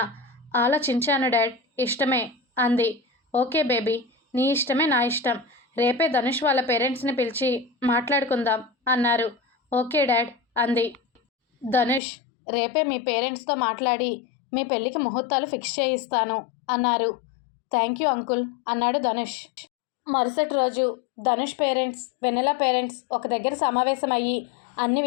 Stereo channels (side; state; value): right; drops out; at 12.0 s